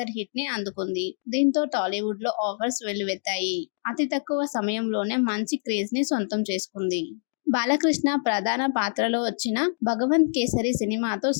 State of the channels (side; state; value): right; silent; digital silence